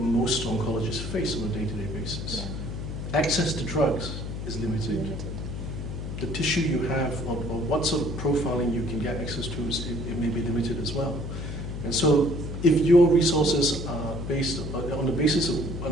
oncologists face on a day-to-day basis. Yeah. Access to drugs is limited. The tissue you have, or what sort of profiling you can get access to, it may be limited as well. And so, if your resources are based on the basis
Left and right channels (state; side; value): noise; left; hum, 6 dB below the sound